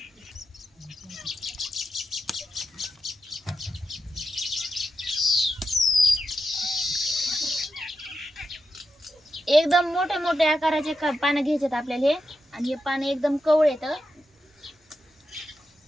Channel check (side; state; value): both; normal; correlation 0.88